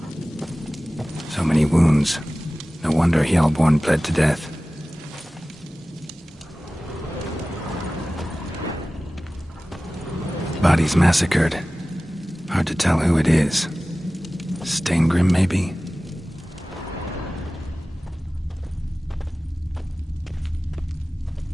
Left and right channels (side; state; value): both; normal; correlation 0.97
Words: So many wounds. No wonder Hjalborn bled to death. Bodies massacred. Hard to tell who it is. Steingrim, maybe?